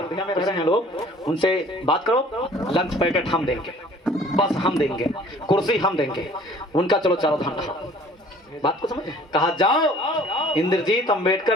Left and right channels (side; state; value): both; normal; correlation 0.52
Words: में रह रहे हैं लोग, उनसे बात करो, लंच पैकेट हम देंगे, बस हम देंगे, कुर्सी हम देंगे, उनका चलो चारों धाम रहा। बात को समझ, कहा जाओ इंद्रजीत